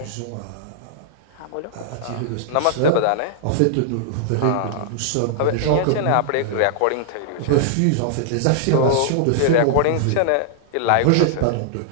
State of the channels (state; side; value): different; both; correlation -0.01